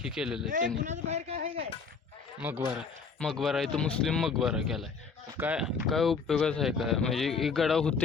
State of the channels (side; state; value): right; quieter; 5.1 dB